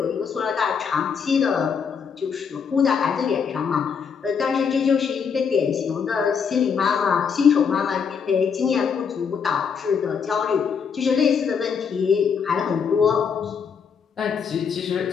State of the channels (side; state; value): right; quieter; 6.4 dB